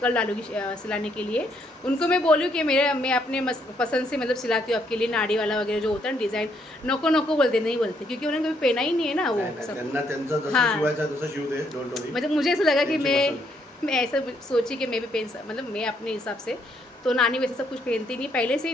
डालूंगी सिलाने के लिए. उनको मैं बोलूँ कि मैं अपने पसंद से मतलब सिलाती हूँ आपके लिए. नाड़ी वाला वगैरह जो होता है ना डिज़ाइन, नको नको बोलते नहीं बोलते क्योंकि उन्होंने कभी पहना ही नहीं है ना वो सब. त्यांना त्यांचं जसं हाँ. शिवायचं तसं शिवू दे. डोंट वरी. मतलब मुझे ऐसा लगा कि त्यांची मैं ऐसा सोची कि मैं भी पहन मतलब मैं अपने हिसाब से. तो नानी वैसे सब कुछ पहनती नहीं, पहले से ही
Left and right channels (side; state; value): both; normal; correlation 0.72